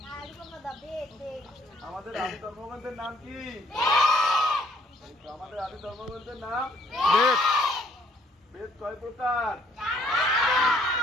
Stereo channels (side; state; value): both; normal; correlation 0.65